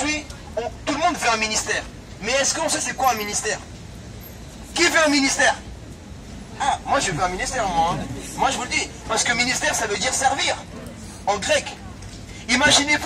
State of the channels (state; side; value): identical; both; correlation 1.00